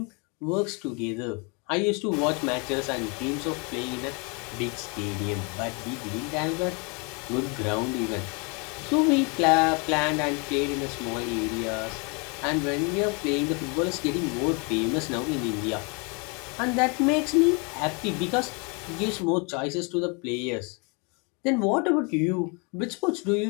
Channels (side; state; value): right; quieter; 32.6 dB